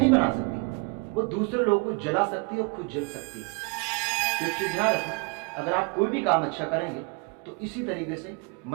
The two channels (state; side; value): quieter; left; 31.9 dB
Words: बना सकती, वो दूसरे लोगों को जला सकती है और खुद जल सकती है। तो ध्यान रखना, अगर आप कोई भी काम अच्छा करेंगे तो इसी तरीके से